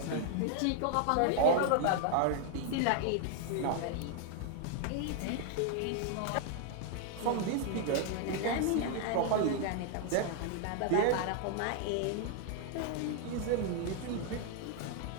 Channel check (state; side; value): different; both; correlation 0.00